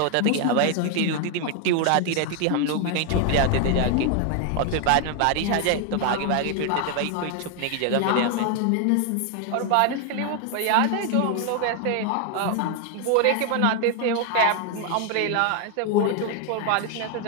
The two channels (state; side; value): different; both; correlation 0.00